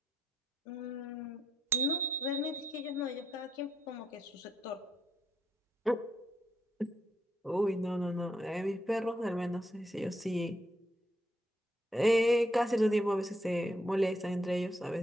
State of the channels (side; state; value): both; normal; correlation 0.79